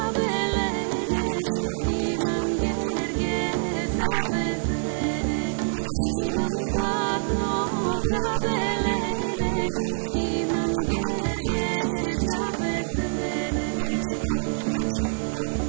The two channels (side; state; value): left; silent; digital silence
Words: jedina sirovina od koje se pravi katran. Pre 50-100 godina vrlo malo je doktora bilo, vrlo malo je ovih medikamenata, da kažemo, sofisticiranih bilo. Uglavnom se narod lečio